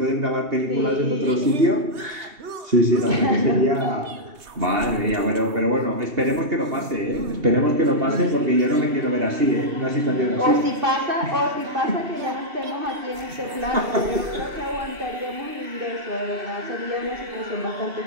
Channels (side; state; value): left; late; 3.3 ms